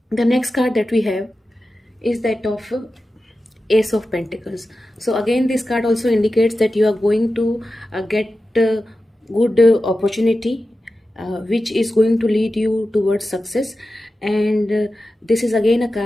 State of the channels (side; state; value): both; normal; correlation 0.93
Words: The next card that we have is that of Ace of Pentacles. So again, this card also indicates that you are going to get good opportunity, which is going to lead you towards success. And this is again a